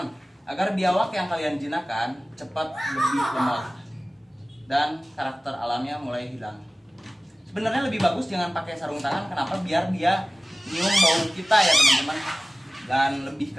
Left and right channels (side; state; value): both; normal; correlation 0.97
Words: agar biawak yang kalian jinakkan cepat lebih lemah dan karakter alamnya mulai hilang. Sebenarnya lebih bagus jangan pakai sarung tangan. Kenapa? Biar dia nyium bau kita ya teman-teman, dan lebih